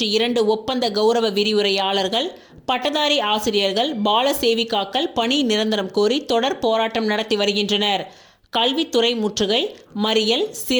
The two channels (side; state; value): both; identical; correlation 1.00